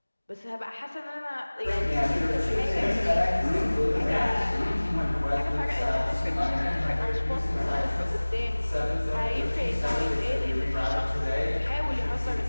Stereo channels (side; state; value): both; inverted; correlation -1.00